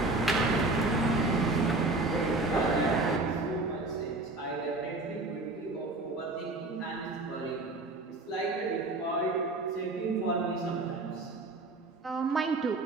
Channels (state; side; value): quieter; left; 3.0 dB